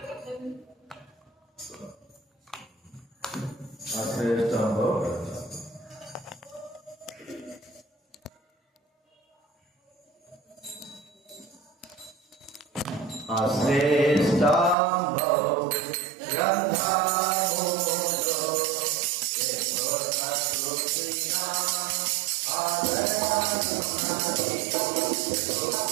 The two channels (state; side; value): drops out; left; at 14.8 s